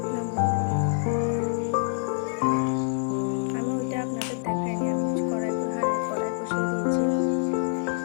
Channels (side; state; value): right; silent; digital silence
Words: নামিয়ে নেব। আমি ওইটা আপনাদের দেখাইনি, আমি কড়াই বসিয়ে দিয়েছি।